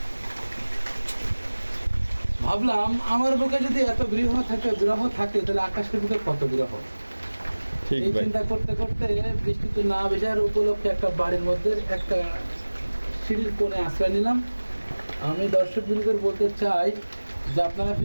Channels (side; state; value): both; inverted; correlation -1.00